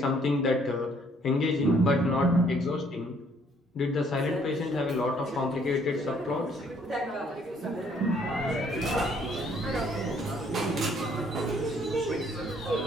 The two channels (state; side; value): normal; both; correlation 0.64